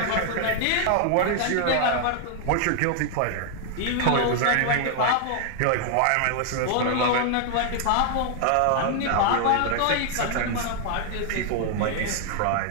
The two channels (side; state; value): both; different; correlation 0.00